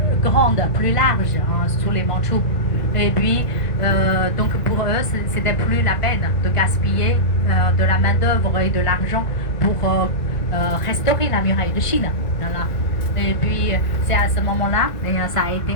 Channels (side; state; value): right; late; 1.5 ms